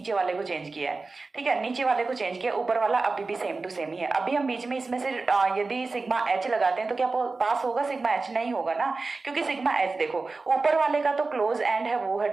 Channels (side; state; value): left; quieter; 3.8 dB